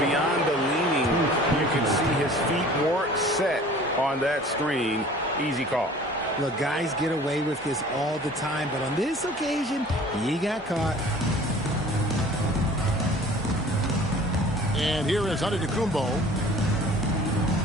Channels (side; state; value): both; normal; correlation 0.47